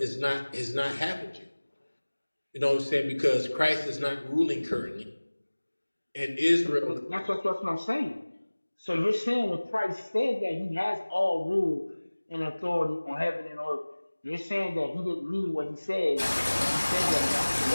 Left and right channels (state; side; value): inverted; both; correlation -1.00